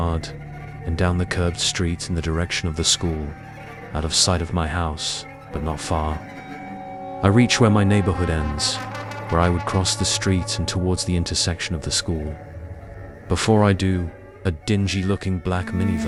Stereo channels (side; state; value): both; identical; correlation 1.00